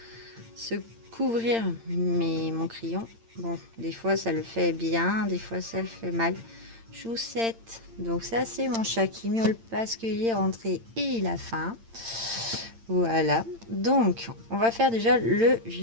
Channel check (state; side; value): late; left; 8.8 ms